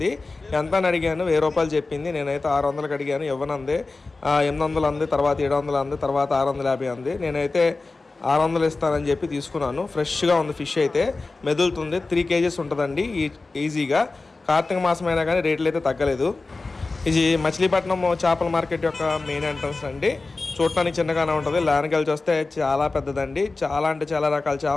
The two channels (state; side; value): quieter; right; 3.6 dB